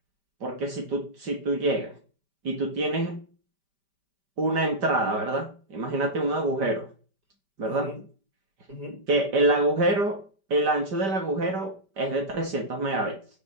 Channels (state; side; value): late; left; 5.1 ms